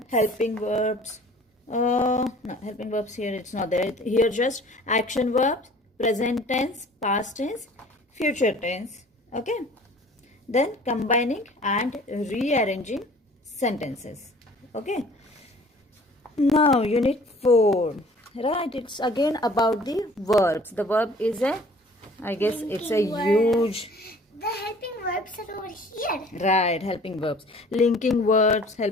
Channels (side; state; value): both; normal; correlation 0.50